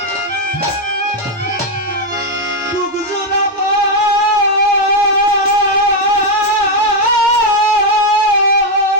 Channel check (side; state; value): both; normal; correlation 0.03